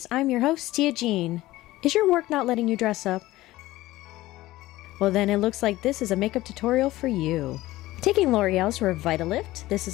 I'm your host, Tia Jean. Is your work not letting you dress up? Well then it looks like this is a makeup tutorial for you. Taking L'Oreal's Revitalift, this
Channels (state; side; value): quieter; right; 17.2 dB